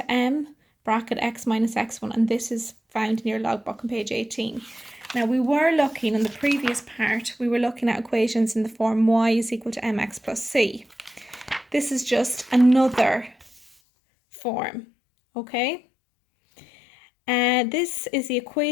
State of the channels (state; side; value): drops out; right; at 13.7 s